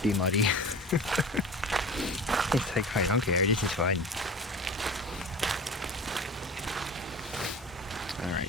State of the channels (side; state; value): both; normal; correlation 0.36